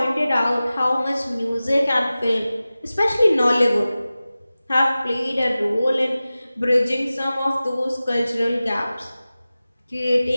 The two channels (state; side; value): inverted; both; correlation -0.96